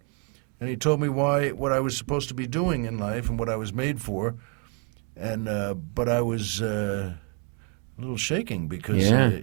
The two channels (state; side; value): quieter; left; 38.5 dB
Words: And he told me what I was supposed to be doing in life and what I was made for. And but I was a little shaking because